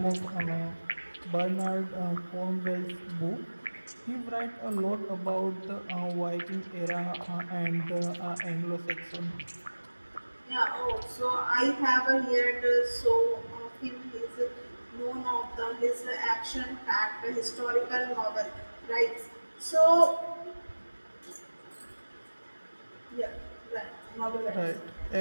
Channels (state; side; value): inverted; both; correlation -1.00